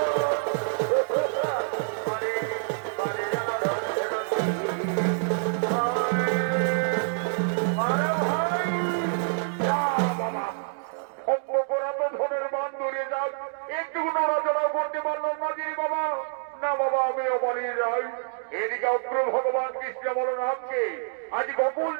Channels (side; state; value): left; silent; digital silence